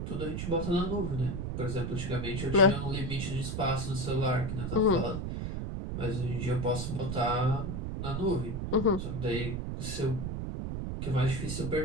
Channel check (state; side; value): noise; right; rumble, 3 dB below the sound